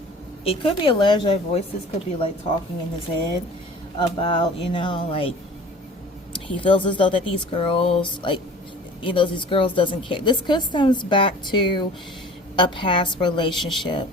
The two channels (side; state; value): both; normal; correlation 0.44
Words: it could be alleged that voices could be like talking in his head about, you know, like he feels as though that these girls, like, you know, these girls doesn't care. This could stems back to a past relationship,